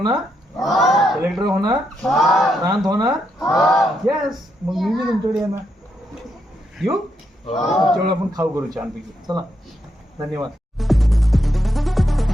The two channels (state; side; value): normal; both; correlation 0.80